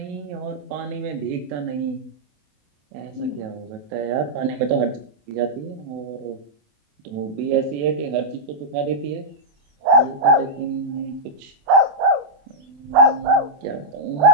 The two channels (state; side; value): late; left; 28 ms